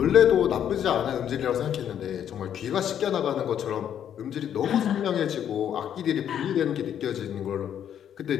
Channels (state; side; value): quieter; right; 9.5 dB